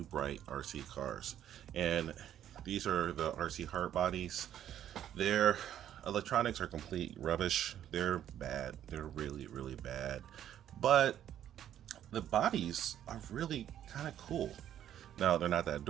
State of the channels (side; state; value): left; quieter; 10.8 dB